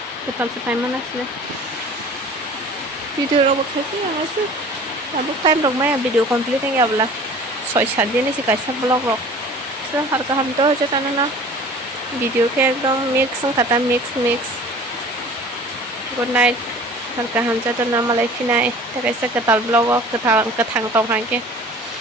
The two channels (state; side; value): normal; both; correlation 0.45